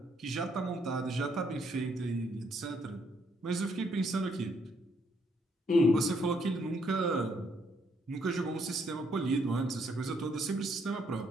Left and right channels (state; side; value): normal; both; correlation 0.71